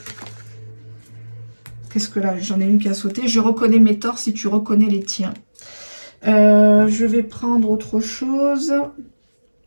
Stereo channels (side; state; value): both; inverted; correlation -1.00